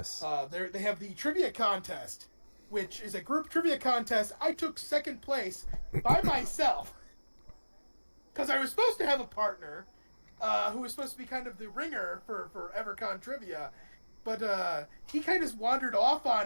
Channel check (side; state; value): both; inverted; correlation -1.00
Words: they have the trivia contest, which is a group trivia contest. I took second place by myself because I was supposed to have a partner who was supposed to be kind of the ringer for EverCon trivia, but he kind of wandered off